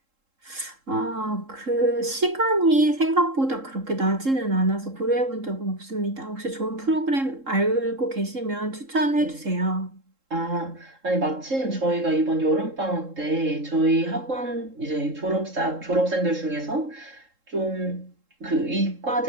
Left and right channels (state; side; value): late; left; 3.7 ms